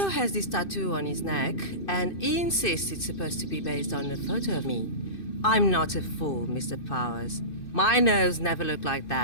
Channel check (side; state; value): right; late; 2.6 ms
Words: has this tattoo on his neck, and he insists it's supposed to be based on a photo of me. I'm not a fool, Mr. Powers. My nose never looked like